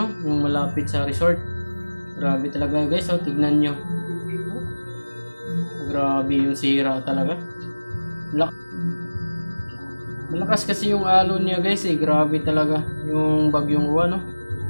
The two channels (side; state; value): both; inverted; correlation -1.00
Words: Yung malapit sa resort. Grabe talaga, guys. Oh, tignan nyo. Grabe yung sira talaga. Malakas kasi yung alon niya, guys, eh. Grabe talaga yung Bagyong Uwan, no?